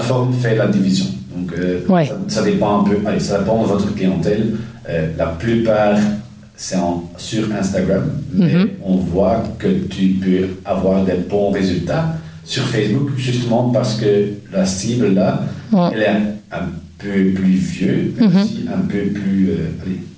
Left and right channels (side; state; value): both; identical; correlation 1.00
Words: fait la division. Donc, ça dépend un peu. Allez, ça dépend de votre clientèle. La plupart, c'est sur Instagram, mais on voit que tu peux avoir des bons résultats sur Facebook, justement parce que la cible là, elle est un peu plus vieux, mais aussi un peu plus...